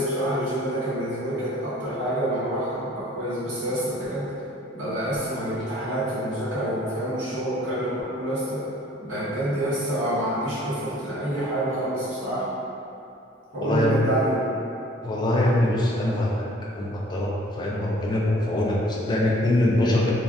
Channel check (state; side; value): normal; both; correlation 0.54